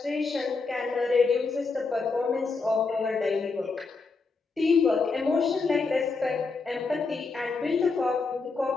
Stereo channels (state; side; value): quieter; right; 4.2 dB